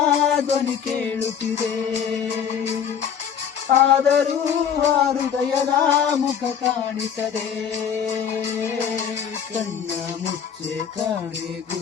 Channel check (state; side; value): quieter; right; 7.9 dB